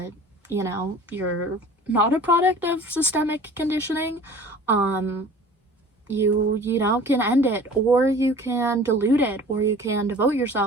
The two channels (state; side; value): normal; both; correlation 0.45